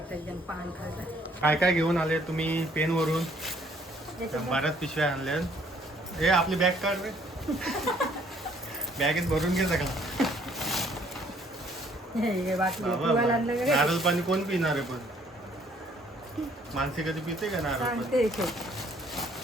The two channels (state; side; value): normal; both; correlation 0.62